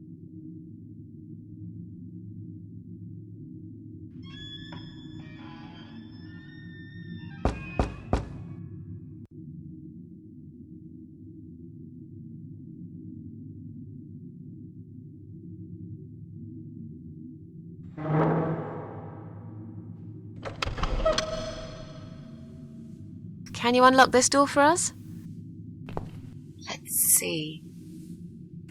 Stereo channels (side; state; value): both; identical; correlation 1.00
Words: Can you unlock this door for us? Let's see.